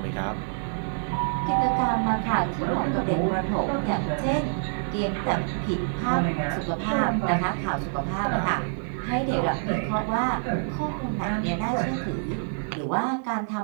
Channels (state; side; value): silent; left; digital silence